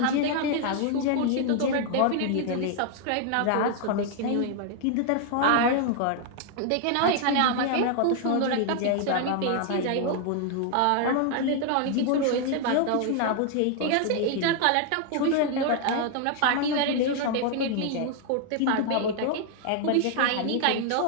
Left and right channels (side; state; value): both; different; correlation 0.00